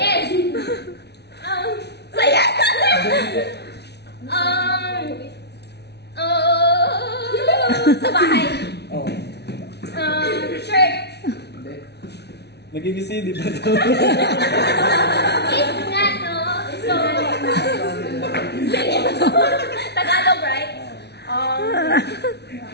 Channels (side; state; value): right; late; 0.49 ms